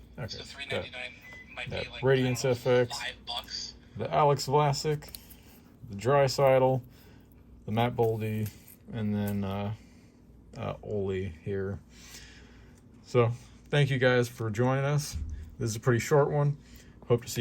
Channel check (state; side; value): identical; both; correlation 1.00